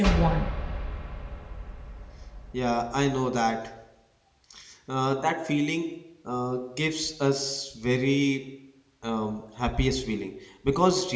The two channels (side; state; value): both; identical; correlation 1.00